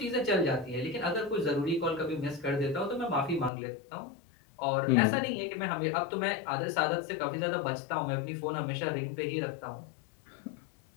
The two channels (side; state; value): right; drops out; at 3.5 s